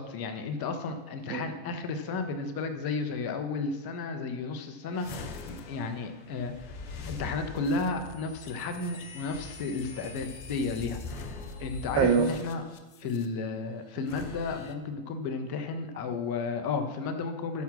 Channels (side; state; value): left; late; 14 ms